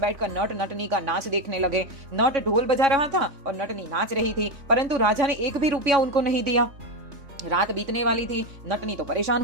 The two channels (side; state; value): left; late; 3.6 ms